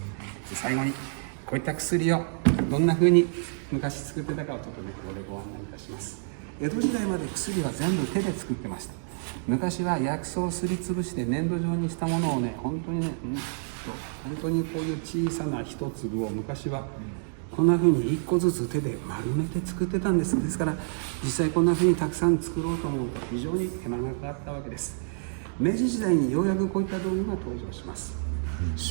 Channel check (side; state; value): left; silent; digital silence